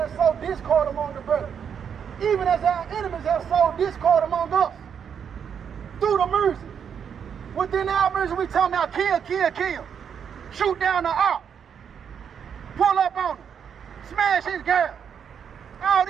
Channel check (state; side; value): quieter; left; 7.6 dB